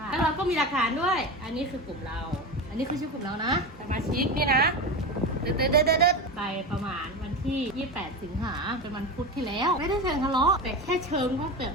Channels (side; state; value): both; normal; correlation 0.23